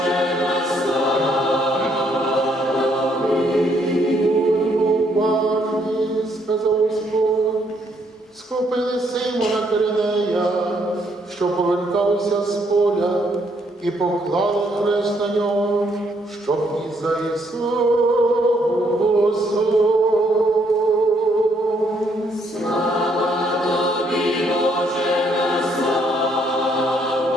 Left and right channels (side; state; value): both; normal; correlation 0.71